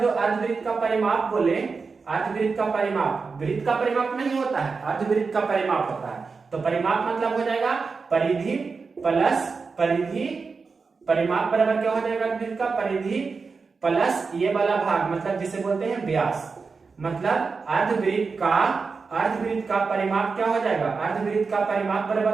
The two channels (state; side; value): quieter; left; 4.7 dB